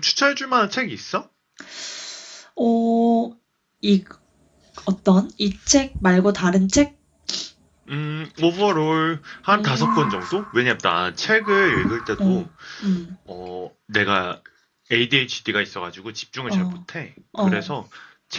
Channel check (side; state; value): both; identical; correlation 1.00